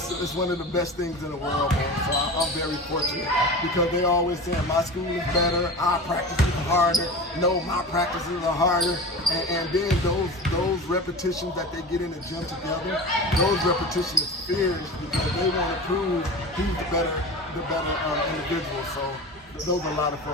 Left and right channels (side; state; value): both; normal; correlation 0.31